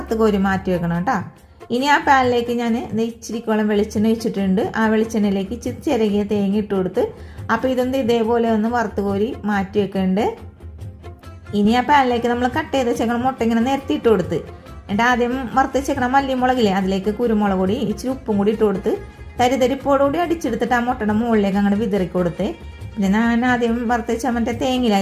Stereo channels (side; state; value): both; identical; correlation 1.00